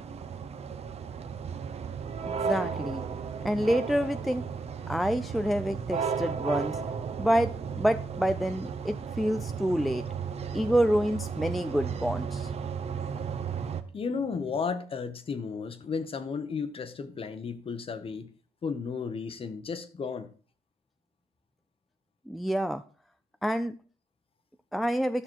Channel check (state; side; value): normal; both; correlation 0.84